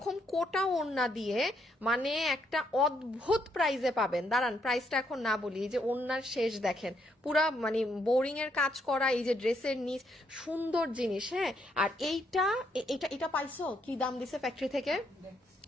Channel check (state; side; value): normal; both; correlation 0.74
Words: কোটা ওড়না দিয়ে মানে একটা অদ্ভুত প্রাইজে পাবেন। দাঁড়ান প্রাইসটা এখন না বলি। এই যে ওড়নার শেষ দেখেন, পুরা মানে বোরিং এর কাজ করা, এই যে ড্রেসের নিচ সুন্দর জিনিস। হ্যাঁ, আর এটা পাইছো কি দাম দিছে ফ্যাক্টরি থেকে?